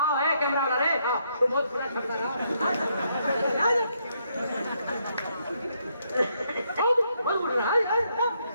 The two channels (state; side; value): inverted; both; correlation -0.75